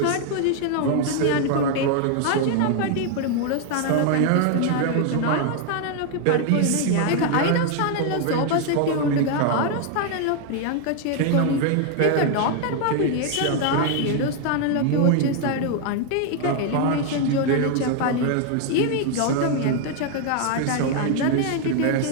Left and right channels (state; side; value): different; both; correlation 0.01